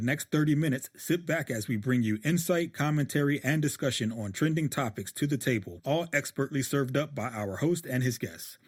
next 30 minutes, sit back as we bring you insight, commentary, and discussion on trending topics to the table, all expertly served up by our host and his guests.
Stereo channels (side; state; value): both; identical; correlation 1.00